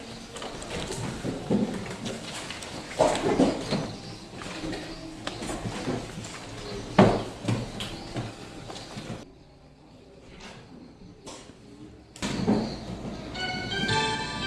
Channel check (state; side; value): identical; both; correlation 1.00